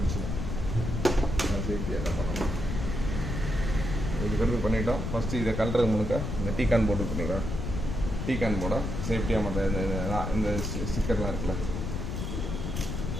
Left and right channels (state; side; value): noise; left; rumble, 3 dB below the sound